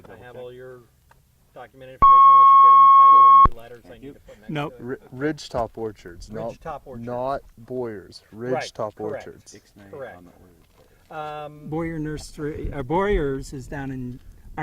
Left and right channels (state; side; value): identical; both; correlation 1.00